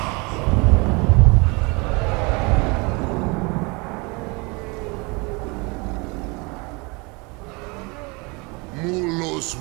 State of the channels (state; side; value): quieter; left; 28.3 dB